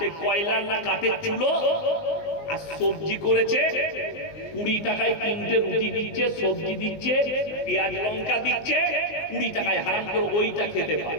কয়লার না কাঠের চুলো, আর সবজি করেছে, 20 টাকায় 3টে রুটি দিচ্ছে, সবজি দিচ্ছে, পেঁয়াজ লঙ্কা দিচ্ছে, 20 টাকায় হারাম করে ওইটা খেতে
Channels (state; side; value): late; right; 19 ms